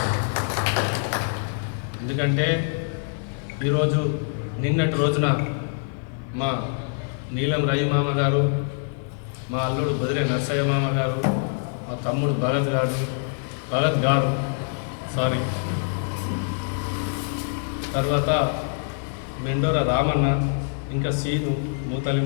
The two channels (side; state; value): right; silent; digital silence